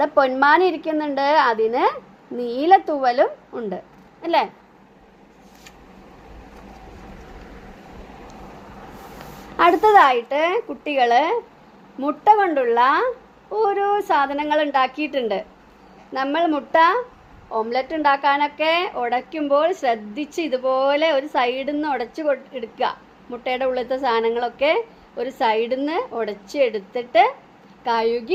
പൊന്മാൻ ഇരിക്കുന്നുണ്ട്, അതിന് നീല തൂവലും ഉണ്ട് അല്ലേ? അടുത്തതായിട്ട് കുട്ടികൾ മുട്ട കൊണ്ടുള്ള ഓരോ സാധനങ്ങൾ ഉണ്ടാക്കിയിട്ടുണ്ട്. നമ്മൾ മുട്ട ഓംലെറ്റ് ഉണ്ടാക്കാനൊക്കെ ഉടയ്ക്കുമ്പോൾ ശ്രദ്ധിച്ച് ഇതുപോലെ ഒരു സൈഡിൽ നിന്ന് ഉടച്ച് എടുക്കുക. മുട്ടയുടെ ഉള്ളിലത്തെ സാധനങ്ങളൊക്കെ ഒരു സൈഡിൽ നിന്ന് ഉടച്ച് എടുത്തിട്ട് കഴുകി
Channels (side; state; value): both; identical; correlation 1.00